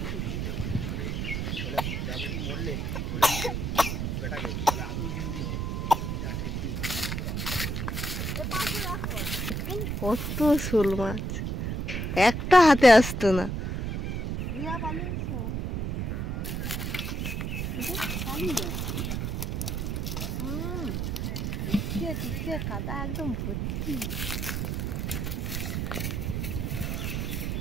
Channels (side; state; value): right; noise; rumble, 1 dB below the sound